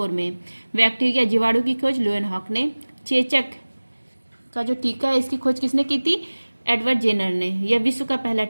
में। बैक्टीरिया जीवाणु की खोज लुएन हॉक ने। चेचक का जो टीका है इसकी खोज किसने की थी? एडवर्ड जेनर ने। यह विश्व का पहला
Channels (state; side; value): inverted; both; correlation -1.00